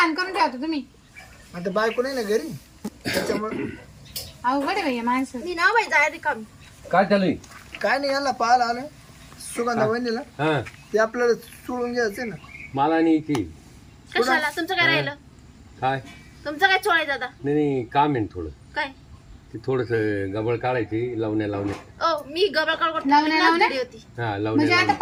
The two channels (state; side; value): identical; both; correlation 1.00